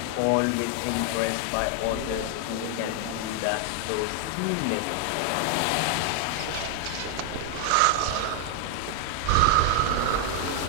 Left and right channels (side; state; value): both; different; correlation 0.00